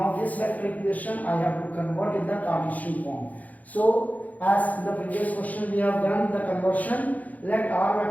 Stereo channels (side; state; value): right; late; 0.077 ms